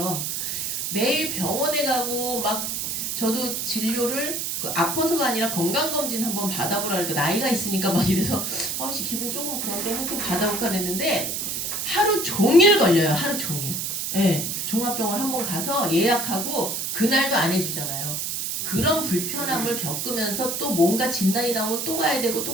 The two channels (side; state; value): right; noise; hiss, 2 dB below the sound